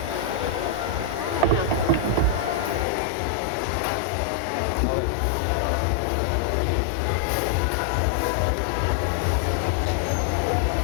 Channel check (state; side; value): drops out; right; at 2.9 s